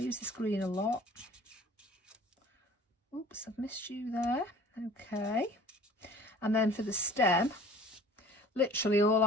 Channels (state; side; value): normal; both; correlation 0.48